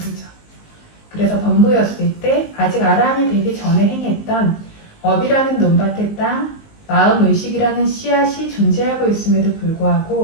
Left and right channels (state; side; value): late; right; 19 ms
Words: 그래서 범부였을 때 아직 아라한이 되기 전에 행했던 업이라는 논밭의 땅, 마음 의식이라는 씨앗이 존재하고 있음에도